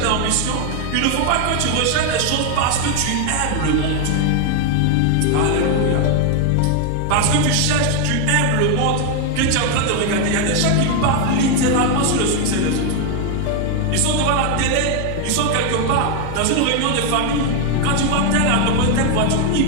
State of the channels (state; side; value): different; both; correlation 0.01